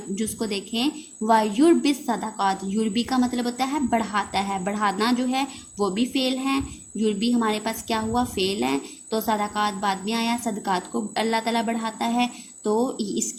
جز کو دیکھیں وَيُرْبِي الصَّدَقَاتِ، یوربی کا مطلب ہوتا ہے بڑھاتا ہے، بڑھانا جو ہے وہ بھی فعل ہے. یوربی ہمارے پاس کیا ہوا؟ فعل ہے. تو صدقات بعد میں آیا، صدقات کو اللہ تعالیٰ بڑھاتا ہے، تو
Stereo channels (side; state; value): both; identical; correlation 1.00